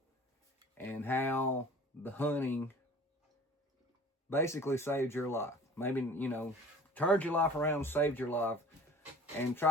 and how the hunting basically saved your life. Maybe, you know, turned your life around, saved your life, and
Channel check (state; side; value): normal; both; correlation 0.45